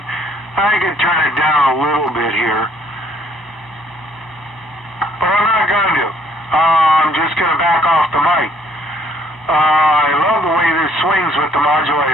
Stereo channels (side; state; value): both; normal; correlation 0.63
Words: I can turn it down a little bit here. But I'm not going to. I'm just going to back off the mic. I love the way this swings with the